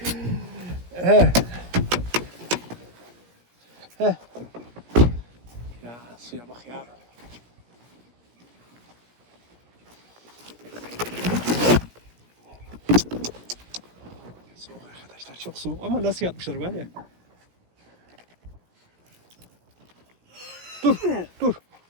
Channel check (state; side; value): late; left; 17 ms